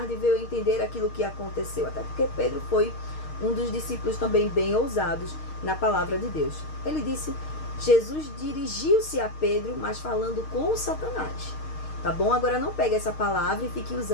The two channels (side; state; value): right; late; 6.5 ms